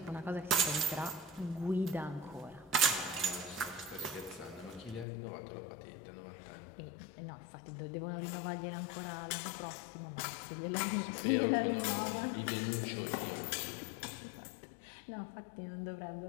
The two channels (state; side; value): drops out; right; at 5.1 s